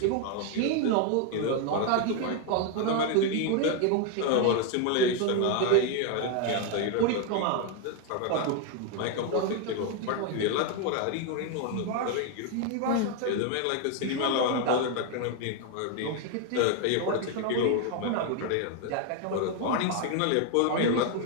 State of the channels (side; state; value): both; different; correlation 0.01